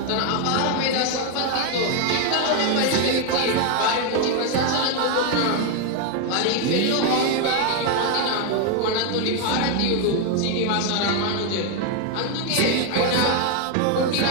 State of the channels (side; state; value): both; different; correlation 0.01